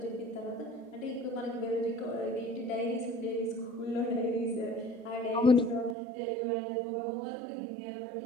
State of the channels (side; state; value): left; drops out; at 6.0 s